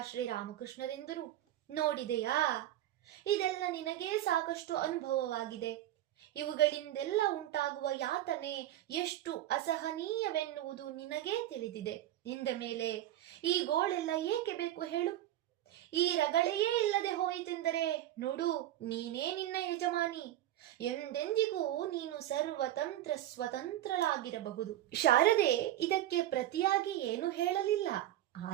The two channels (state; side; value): quieter; left; 13.4 dB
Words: ಶ್ರೀರಾಮಕೃಷ್ಣರೆಂದರು, ನೋಡಿದೆಯಾ, ಇದೆಲ್ಲ ನಿನಗೇ ಸಾಕಷ್ಟು ಅನುಭವವಾಗಿದೆ. ಇವುಗಳಿಂದೆಲ್ಲ ಉಂಟಾಗುವ ಯಾತನೆ ಎಷ್ಟು ಅಸಹನೀಯವೆನ್ನುವುದು ನಿನಗೇ ತಿಳಿದಿದೆ. ಇಂದ ಮೇಲೆ ಈ ಗೋಳೆಲ್ಲ ಏಕೆ ಬೇಕು ಹೇಳು? ಈ ರಗಳೆಯೇ ಇಲ್ಲದೆ ಹೋಯಿತೆಂದರೆ ನೋಡು, ನೀನೇ ನಿನ್ನ ಯಜಮಾನಿ. ಎಂದೆಂದಿಗೂ ನೀನು ಸರ್ವತಂತ್ರ ಸ್ವತಂತ್ರಳಾಗಿರಬಹುದು. ಶಾರದೆ ಇದಕ್ಕೆ ಪ್ರತಿಯಾಗಿ ಏನು ಹೇಳಲಿಲ್ಲ.